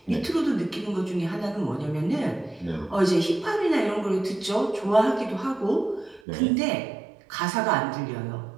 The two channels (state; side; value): drops out; left; at 6.2 s